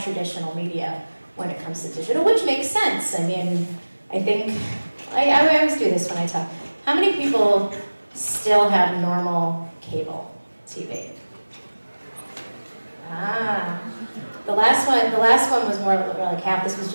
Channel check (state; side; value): inverted; both; correlation -1.00